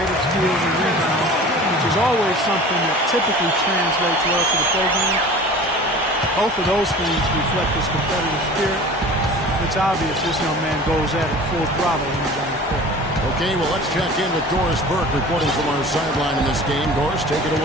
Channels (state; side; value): normal; both; correlation 0.41